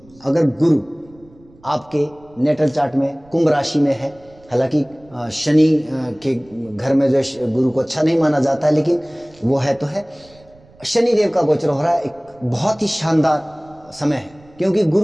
अगर गुरु आपके नेटल चार्ट में कुंभ राशि में है, हालांकि शनि के घर में जो गुरु को अच्छा नहीं माना जाता है, लेकिन वो है तो है। शनि देव का गोचर हो रहा है, एक बहुत ही शानदार समय है, क्योंकि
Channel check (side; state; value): right; noise; rumble, 27 dB below the sound